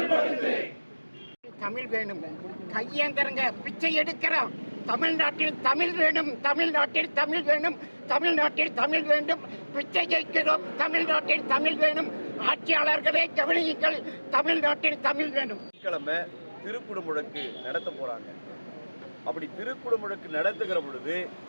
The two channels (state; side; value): inverted; both; correlation -1.00